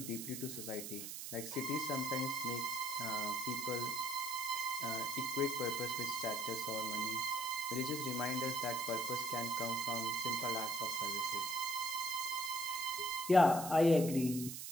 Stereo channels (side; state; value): right; noise; hiss, 7 dB below the sound